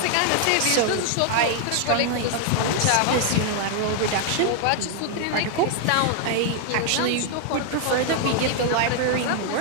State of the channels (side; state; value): both; different; correlation 0.00